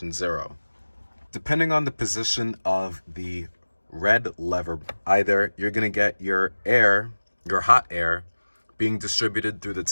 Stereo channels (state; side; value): inverted; both; correlation -1.00